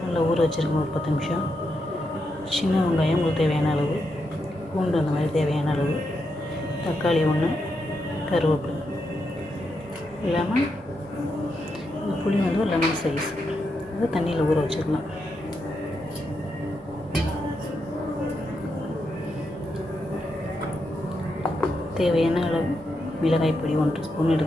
நல்லா ஊற வச்சுருக்கோம் ஒரு 10 நிமிஷம். சின்ன வெங்காயம் உங்களுக்கு தேவையான அளவு, பூண்டு அந்த மாதிரி தேவையான அளவு, தக்காளி 1, கருவேப்பிலை இல்லாமல் புளி ஒரு லெமன் சைஸ் அதை தண்ணியில் ஊற வச்சுக்கலாம். தேவையான அளவு மிளகாய் பொடி 1 ஸ்பூன்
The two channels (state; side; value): normal; both; correlation 0.83